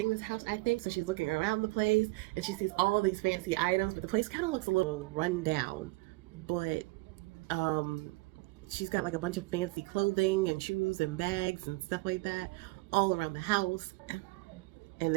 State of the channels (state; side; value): quieter; left; 23.0 dB